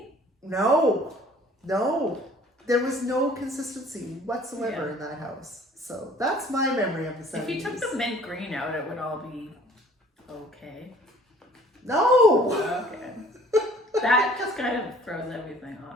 No. There was no consistency whatsoever in that house. So that's my memory of the 70s. If you took the mint green out, it would all be okay. No! Okay. That just kind of throws everything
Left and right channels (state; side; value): normal; both; correlation 0.53